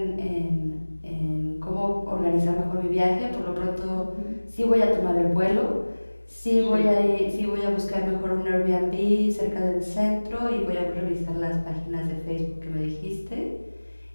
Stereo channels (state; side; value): inverted; both; correlation -1.00